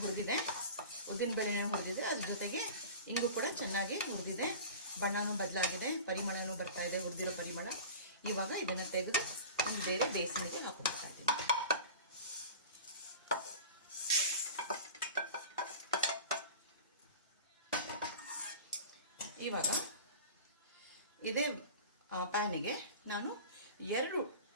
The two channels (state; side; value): inverted; both; correlation -0.37